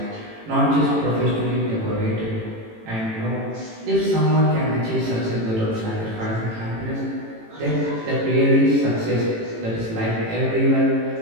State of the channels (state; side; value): late; left; 18 ms